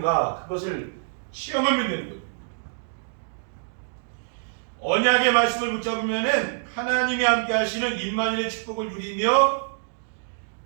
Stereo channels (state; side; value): silent; left; digital silence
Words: 그것을 시험하면 되는 거예요. 언약의 말씀을 붙잡으면은 하나님이 함께 하시는 임마누엘의 축복을 누리며